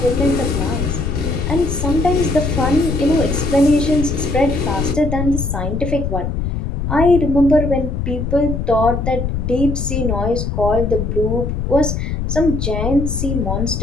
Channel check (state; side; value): noise; left; rumble, 2 dB below the sound